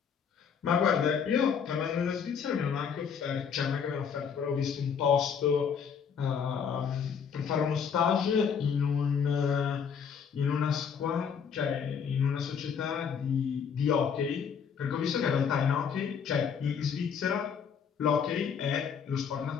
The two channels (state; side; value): quieter; right; 6.9 dB